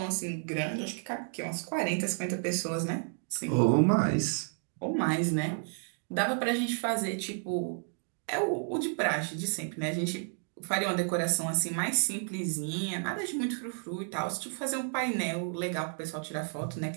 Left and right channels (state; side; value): silent; left; 57 dB below the other